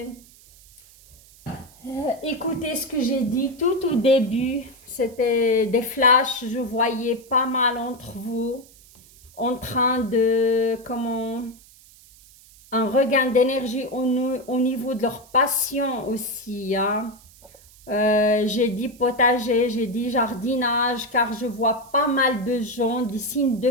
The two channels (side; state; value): right; noise; hiss, 25 dB below the sound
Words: écouté ce que j'ai dit tout au début, c'était des flashs, je voyais pas mal entre vous en train de, comment, un regain d'énergie au niveau de leur passion aussi. Hein. J'ai dit potager, j'ai dit jardinage, car je vois pas mal de gens, des signes